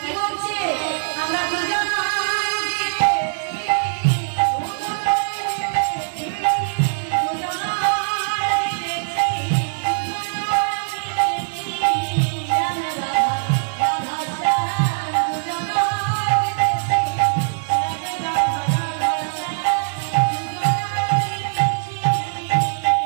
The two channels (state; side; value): silent; left; 65 dB below the other